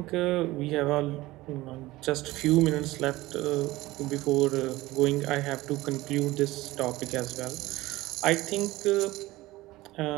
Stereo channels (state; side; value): quieter; left; 18.6 dB